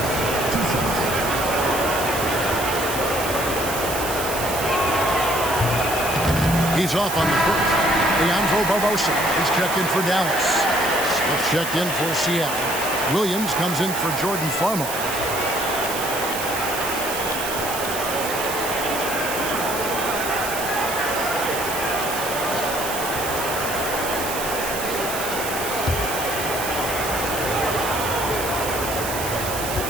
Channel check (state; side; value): noise; right; hiss, 6 dB below the sound